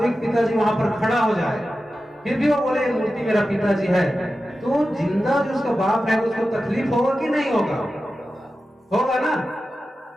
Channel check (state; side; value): normal; both; correlation 0.93